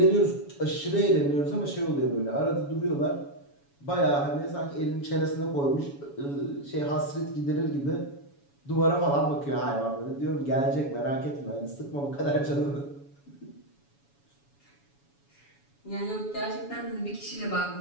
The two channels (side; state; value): right; late; 7.1 ms